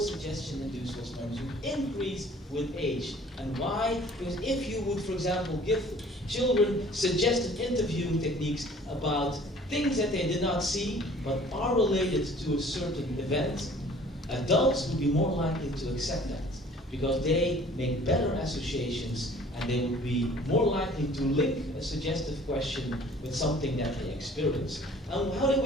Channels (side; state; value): both; normal; correlation 0.52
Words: suggestion-induced false memories would increase with age. And why? Because if you would, for example, give children suggested interviewing techniques about things that they did not see but are related to a certain event, adults would be more likely to accept that because they make better associations and they would be more likely to link a suggestive question with something that they experience. And how do